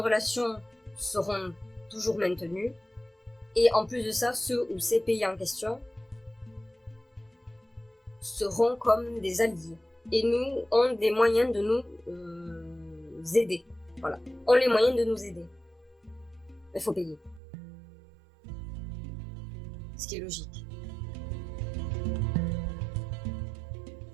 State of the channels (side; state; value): left; drops out; at 17.4 s